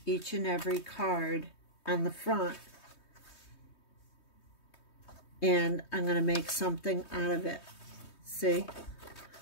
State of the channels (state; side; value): late; right; 3.2 ms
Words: each and every card on the front. And I'm going to make something out of it. See?